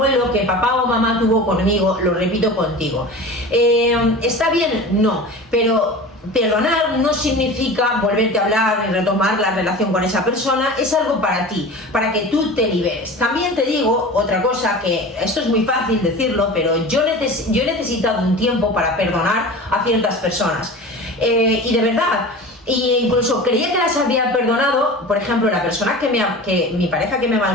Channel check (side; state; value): both; normal; correlation 0.35